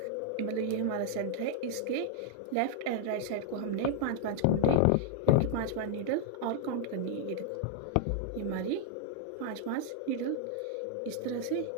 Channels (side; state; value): both; different; correlation -0.01